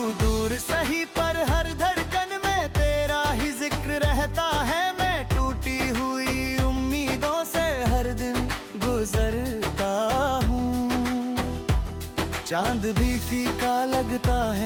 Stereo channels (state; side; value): identical; both; correlation 1.00